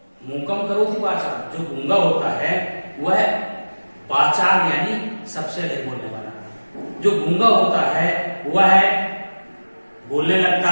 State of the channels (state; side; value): inverted; both; correlation -1.00